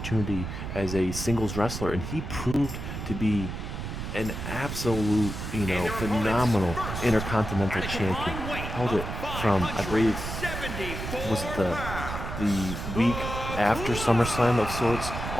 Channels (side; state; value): right; noise; rumble, 6 dB below the sound